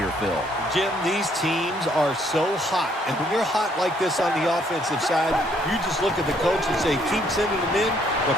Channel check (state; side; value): normal; both; correlation 0.67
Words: Phil. Jim, these teams are so hot. And when you're hot like this on the offensive side, you just look at the coach and say, keep sending them in